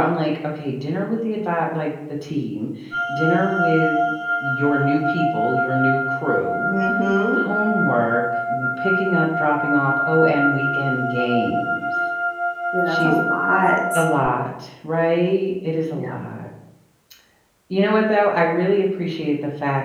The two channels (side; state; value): both; identical; correlation 1.00